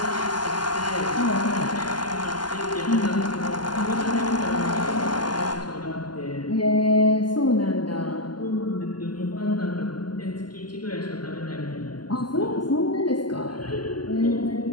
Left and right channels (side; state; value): right; late; 0.71 ms